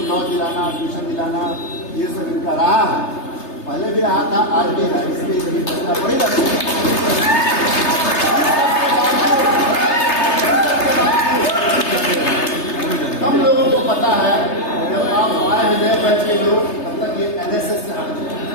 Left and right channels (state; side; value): late; right; 3.3 ms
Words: लॉज दिलाना, ट्यूशन दिलाना, ये सब इनका रहा है, पहले भी रहा था, आज भी है। इसलिए बड़ी रहती है। कम लोगों को पता है, जब आप आए हैं नए बैच के लोग, तब तक ये एनएसएस से